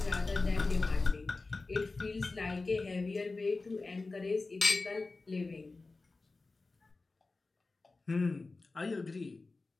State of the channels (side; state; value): right; quieter; 3.6 dB